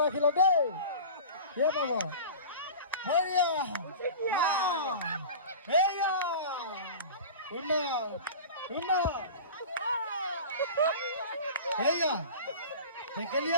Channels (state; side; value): inverted; both; correlation -0.35